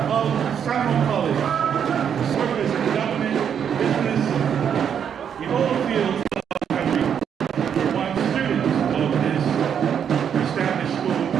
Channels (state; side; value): quieter; left; 8.1 dB